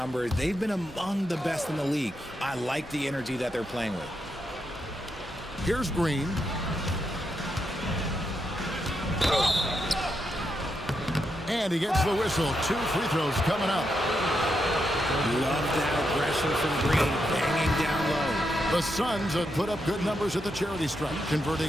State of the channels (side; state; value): both; normal; correlation 0.83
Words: they've been among the best in the league. I like the energy that they're playing with. Here's Green. And he gets the whistle. 2 free throws coming up. Love that aggression from Green, banging down low. The Suns have put up good numbers at the charity stripe,